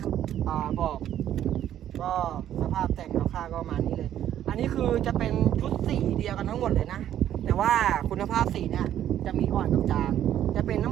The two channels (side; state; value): left; quieter; 11.1 dB